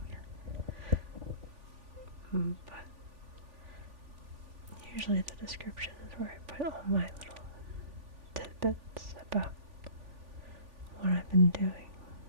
But usually the description is where I put all my little tidbits about what I've been doing,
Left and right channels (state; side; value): late; left; 3.5 ms